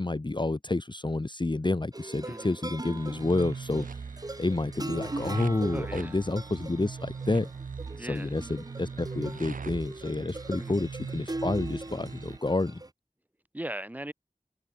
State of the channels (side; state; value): both; normal; correlation 0.86